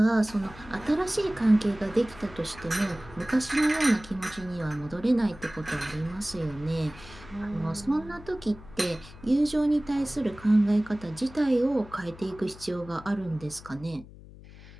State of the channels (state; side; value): noise; left; hum, 18 dB below the sound